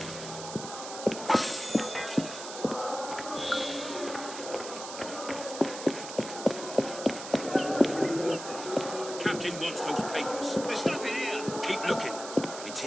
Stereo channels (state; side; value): noise; right; hiss, 10 dB below the sound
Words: Captain wants those papers. There's nothing here. Keep looking. It's